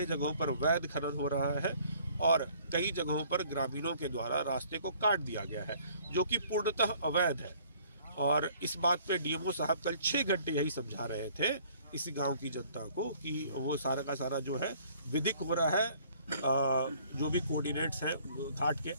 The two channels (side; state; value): both; inverted; correlation -0.57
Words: जगहों पर वैध खनन हो रहा है और कई जगहों पर ग्रामीणों के द्वारा रास्ते को काट दिया गया है, जो कि पूर्णतः अवैध है। और इस बात पे DMO साहब कल 6 घंटे यही समझा रहे थे इस गांव की जनता को कि वो सारा का सारा जो है विधिक हो रहा है, जो भी कोऑर्डिनेट्स हैं घाट के